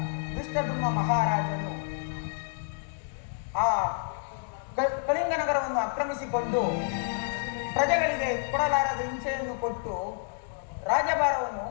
ದುಷ್ಟದುಮ್ಮ ಮಹಾರಾಜನು ಆ ಕಳಿಂಗ ನಗರವನ್ನು ಆಕ್ರಮಿಸಿಕೊಂಡು ಪ್ರಜೆಗಳಿಗೆ ಕೊಡಲಾರದ ಹಿಂಸೆಯನ್ನು ಕೊಟ್ಟು ರಾಜಭಾರವನ್ನು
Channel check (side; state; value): right; silent; digital silence